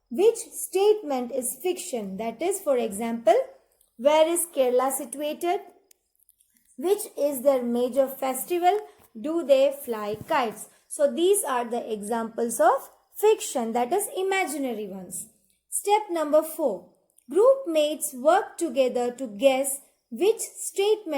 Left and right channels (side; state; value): both; identical; correlation 1.00